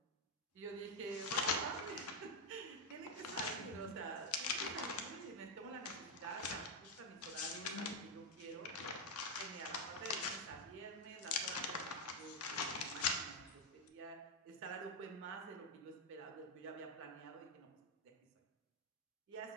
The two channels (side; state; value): both; normal; correlation 0.02